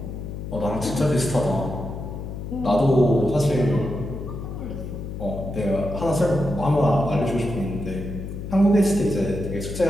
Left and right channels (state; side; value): noise; left; hum, 7 dB below the sound